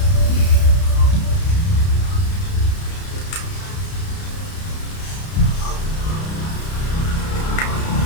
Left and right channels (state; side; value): late; right; 31 ms